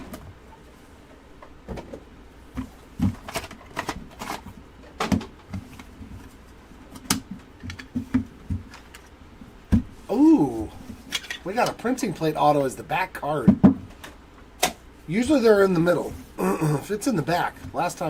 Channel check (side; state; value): both; identical; correlation 1.00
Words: We got a printing plate auto as the back card. Usually they're in the middle. If it's in the back. Last